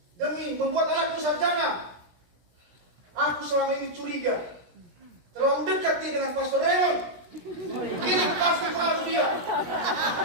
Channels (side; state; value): left; late; 17 ms